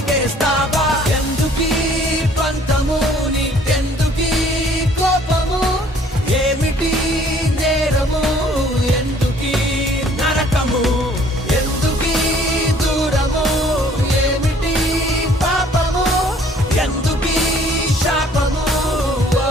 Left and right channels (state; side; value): normal; both; correlation 0.57